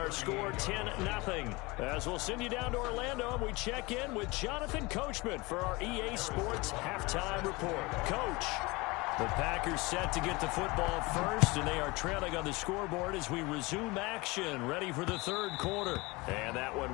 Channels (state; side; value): quieter; right; 24.1 dB